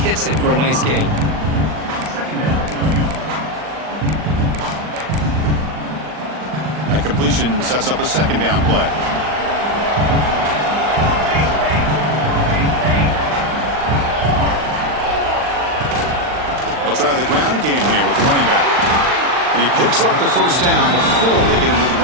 hits it for a nice gain. That completion sets up a second down play. They'll try the ground game here with the running back. And he picks up the first down before they get into the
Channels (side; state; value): left; late; 39 ms